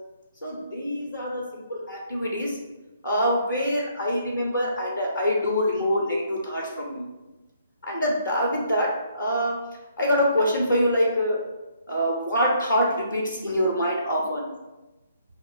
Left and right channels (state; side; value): inverted; both; correlation -0.67